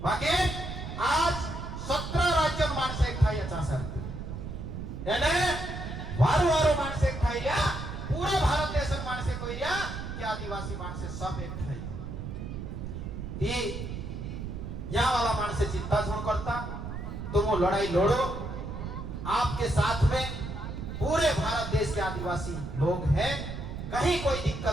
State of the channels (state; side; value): noise; right; rumble, 7 dB below the sound